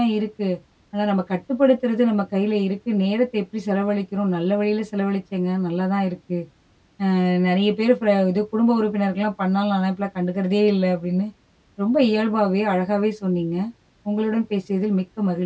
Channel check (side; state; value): both; identical; correlation 1.00